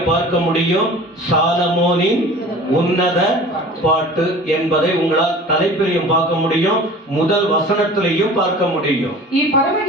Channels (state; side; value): normal; both; correlation 0.42